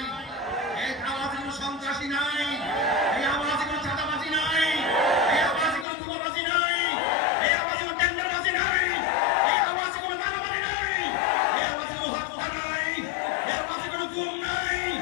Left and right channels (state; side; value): drops out; right; at 5.9 s